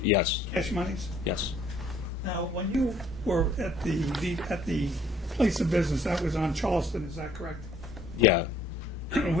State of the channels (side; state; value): both; normal; correlation 0.59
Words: yes. cash monies. Yes. Now, when you were at the place of business, that was on Charleston, is that correct? Yeah.